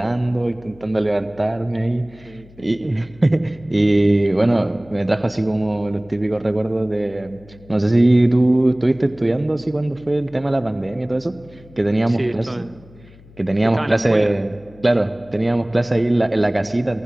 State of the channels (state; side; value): noise; left; hum, 24 dB below the sound